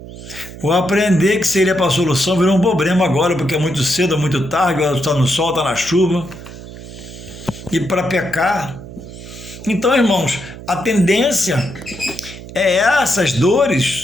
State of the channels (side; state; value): right; noise; hum, 14 dB below the sound